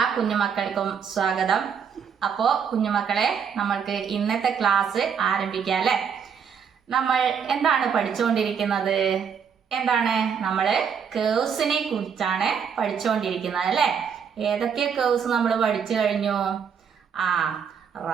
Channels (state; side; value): quieter; left; 7.1 dB